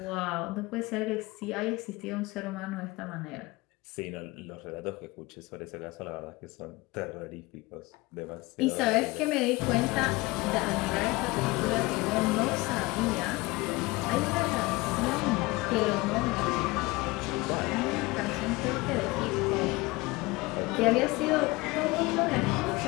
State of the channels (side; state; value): right; quieter; 22.5 dB